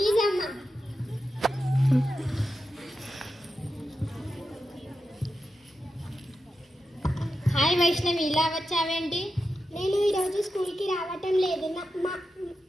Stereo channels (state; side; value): normal; both; correlation 0.89